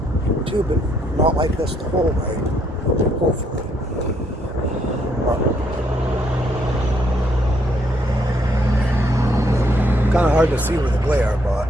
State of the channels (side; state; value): both; normal; correlation 0.71